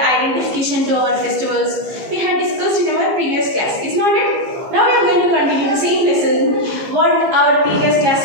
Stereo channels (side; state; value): left; late; 15 ms